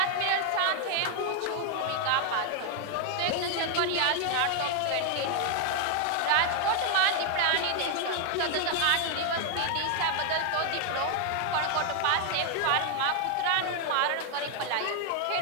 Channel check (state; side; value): different; both; correlation 0.00